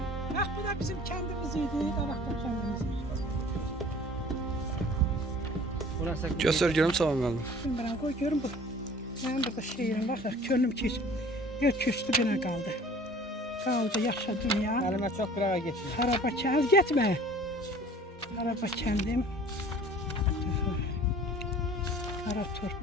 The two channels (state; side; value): normal; both; correlation 0.48